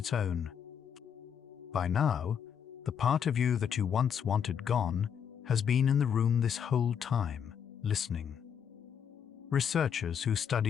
own. By now, the part of you that you once wanted gone has been in the room this whole time, listening. Researchers who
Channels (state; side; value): quieter; right; 7.9 dB